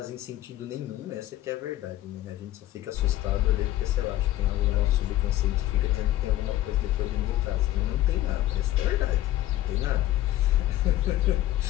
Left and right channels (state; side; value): quieter; right; 14.6 dB